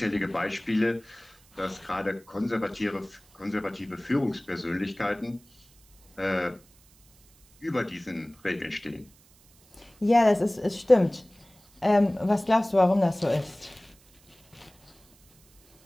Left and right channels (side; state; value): right; noise; hiss, 29 dB below the sound